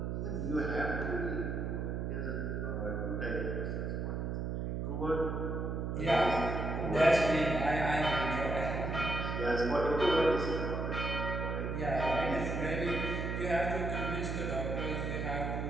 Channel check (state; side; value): noise; right; hum, 2 dB below the sound